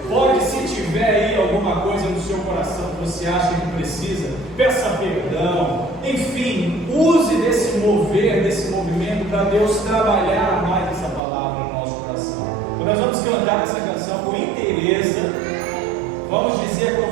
Pode, se tiver aí alguma coisa no seu coração que você acha que precisa, peça perdão. Enfim, use desse mover, desse movimento para Deus trabalhar mais essa palavra no nosso coração. Então nós vamos cantar essa canção com inteireza. Vamos dizer com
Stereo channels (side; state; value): left; drops out; at 11.2 s